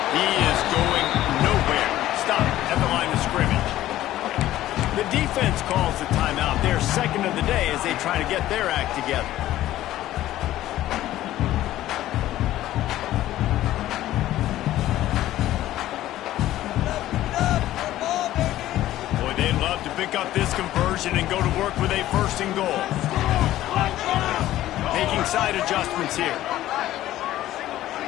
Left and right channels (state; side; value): quieter; right; 14.2 dB